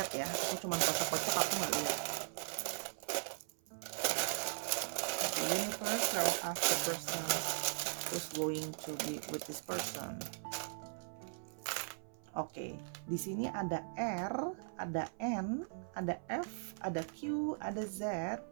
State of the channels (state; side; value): silent; left; 52 dB below the other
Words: ya, aku cuma kocok-kocok, aku nggak lihat. The universe will ask the person who's going to be with this person. Oke, di sini ada R, ada N, ada F, ada Q, ada Z,